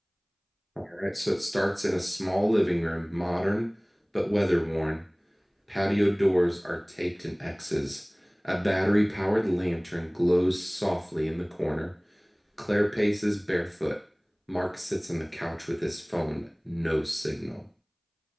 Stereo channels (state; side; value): identical; both; correlation 1.00